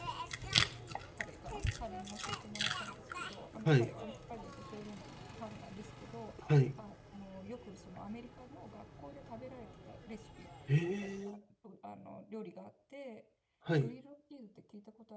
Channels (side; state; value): both; identical; correlation 1.00